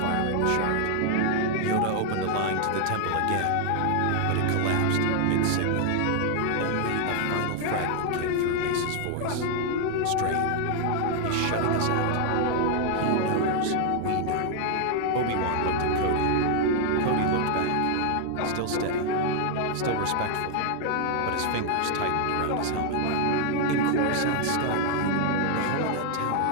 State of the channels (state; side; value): different; both; correlation 0.00